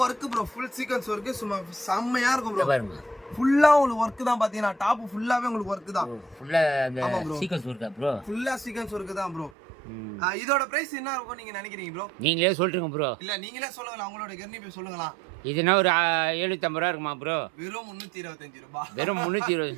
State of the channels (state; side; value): drops out; left; at 9.5 s